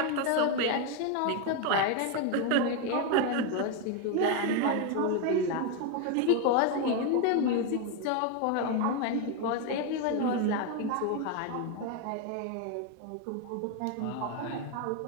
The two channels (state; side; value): different; both; correlation 0.01